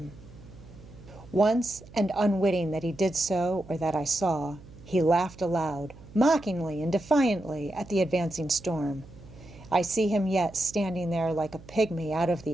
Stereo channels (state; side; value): noise; right; hum, 20 dB below the sound